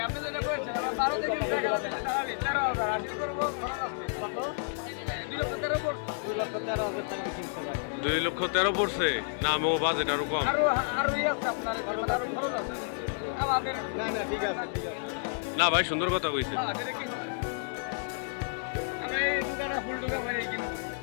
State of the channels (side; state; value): right; silent; digital silence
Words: 2,13,000 পড়ছে না, আমার বাজেট আরো কম। না না ঠিক আছে ঠিক আছে। না ভাই, সুন্দর কথা কইছে।